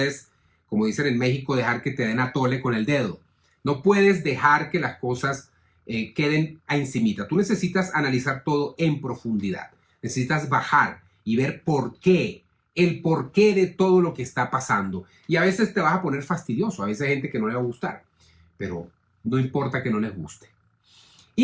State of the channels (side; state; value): both; identical; correlation 1.00